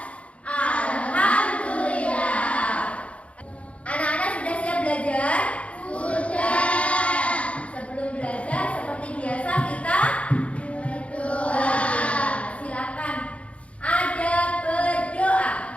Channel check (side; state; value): right; late; 0.063 ms